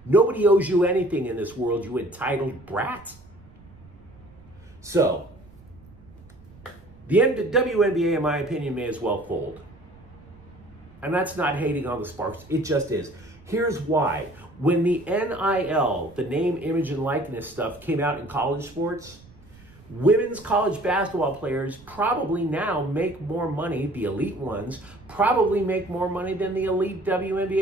Nobody owes you anything in this world, you entitled brat. So, the WNBA, in my opinion, may as well fold. And that's not hating on the Sparks. It just is. Here's why. When the NIL, the name, image, and likeness stuff came out in college sports, women's college basketball players probably now make more money, the elite ones, probably make more money than the elite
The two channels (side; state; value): right; noise; rumble, 24 dB below the sound